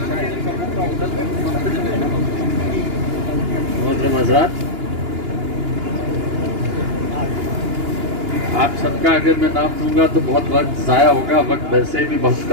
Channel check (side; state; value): left; late; 2.9 ms